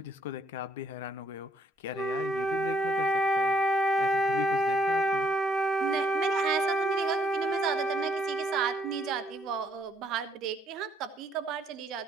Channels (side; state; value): both; normal; correlation 0.68